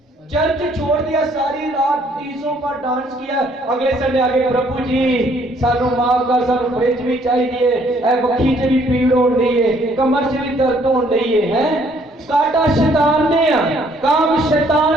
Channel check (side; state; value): both; normal; correlation 0.64